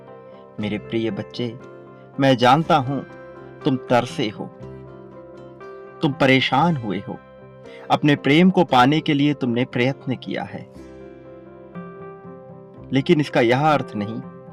मेरे प्रिय बच्चे, मैं जानता हूं तुम तरसे हो, तुम परेशान हुए हो। अपने प्रेम को पाने के लिए तुमने प्रयत्न किया है, लेकिन इसका यह अर्थ नहीं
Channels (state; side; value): identical; both; correlation 1.00